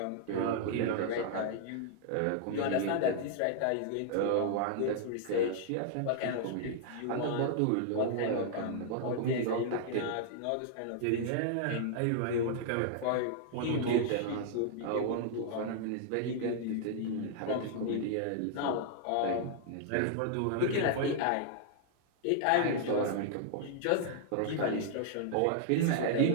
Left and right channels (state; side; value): different; both; correlation -0.01